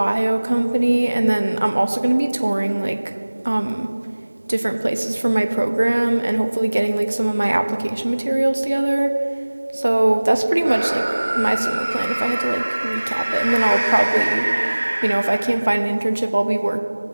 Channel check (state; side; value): inverted; both; correlation -1.00